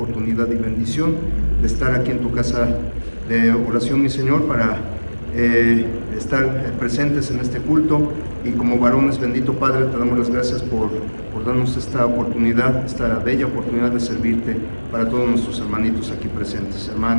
y bendición de estar aquí en tu casa de oración, mi Señor, para estar presentes en este culto. Y como varones, bendito Padre, te damos las gracias por darnos esta oportunidad, esta bella oportunidad de servirte para todos nuestros hermanitos aquí presentes,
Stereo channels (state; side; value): inverted; both; correlation -1.00